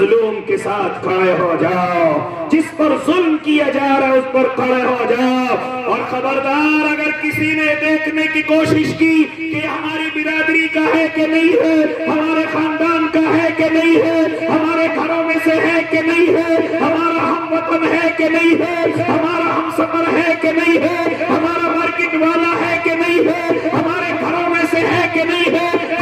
کے ساتھ کھڑے ہو جاؤ، جس پر ظلم کیا جا رہا ہے اس پر کھڑے ہو جاؤ۔ اور خبردار اگر کسی نے دیکھنے کی کوشش کی کہ ہماری برادری کا ہے کہ نہیں ہے، ہمارے خاندان کا ہے کہ نہیں ہے، ہمارے گھروں میں سے ہے کہ نہیں ہے، ہمارا ہم وطن ہے کہ نہیں ہے، ہمارا ہم سفر ہے کہ نہیں ہے، ہمارا مارکیٹ والا ہے کہ نہیں ہے، ہمارے گھروں میں سے ہے کہ نہیں ہے،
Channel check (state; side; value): identical; both; correlation 1.00